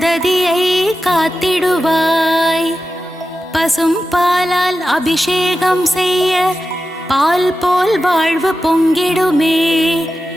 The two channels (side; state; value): both; normal; correlation 0.92